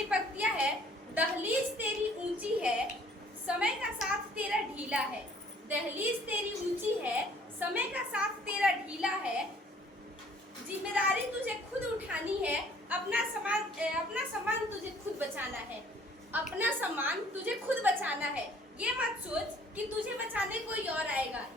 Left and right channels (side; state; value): both; normal; correlation 0.57